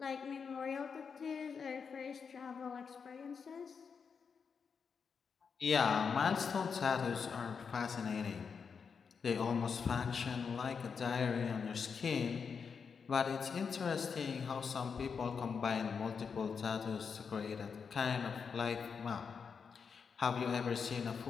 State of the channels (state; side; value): quieter; right; 6.0 dB